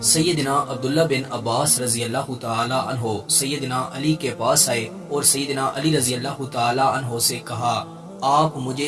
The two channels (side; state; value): both; identical; correlation 1.00